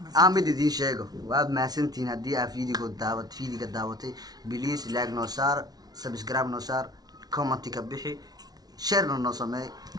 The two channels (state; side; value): late; left; 0.19 ms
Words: aan mid idiin sheego waad mahadsantihiin haddii aad fiidiga daawatay please like noo saar subscribe noo saar commenti ka bixi sharena noo sameey